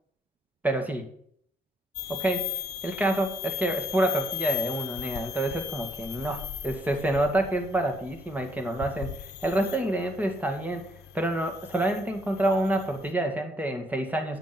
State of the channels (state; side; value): normal; both; correlation 0.69